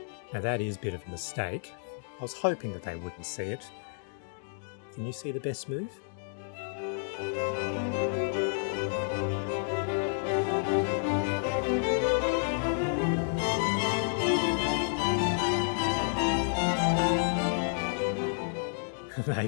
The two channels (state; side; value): silent; right; digital silence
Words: Now that is a bit of a mistake. I was hoping that they wouldn't see it. Can you see the best move? They